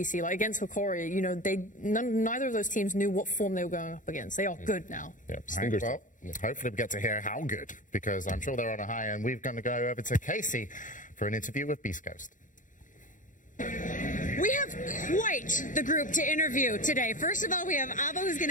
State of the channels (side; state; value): right; late; 0.37 ms